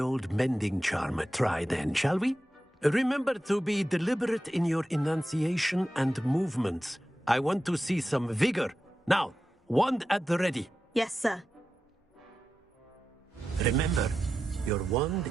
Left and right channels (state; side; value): normal; both; correlation 0.91